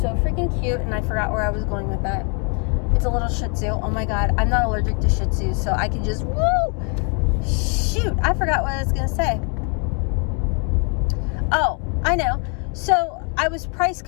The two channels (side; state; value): right; quieter; 37.8 dB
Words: freaking cute, and I forgot where I was going with that. It's a little Shih Tzu. Oh my god, I'm not allergic to Shih Tzu, so I can just shoot, I forgot what I was gonna say. Oh, I know. So I was price